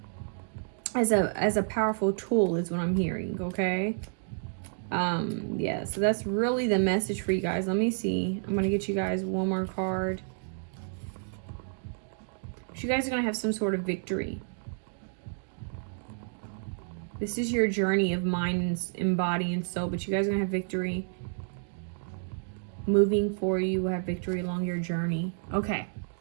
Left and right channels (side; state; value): left; silent; digital silence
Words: As a powerful tool is what I'm hearing, okay? Yeah, so that's really the message for you guys. Let me see. I'm gonna get you guys one more card. You guys are gonna have some sort of victory. This is your journey of mind and body and soul, but you guys are gonna have victory. Moving forward, you will have victory along your journey. Okay,